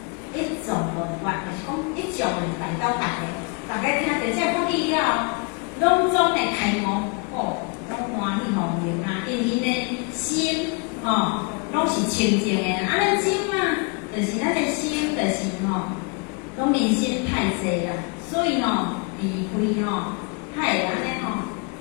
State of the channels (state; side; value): quieter; right; 34.6 dB